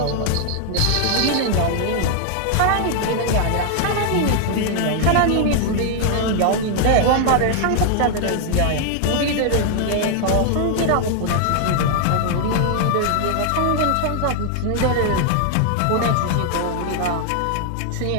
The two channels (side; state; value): both; different; correlation 0.00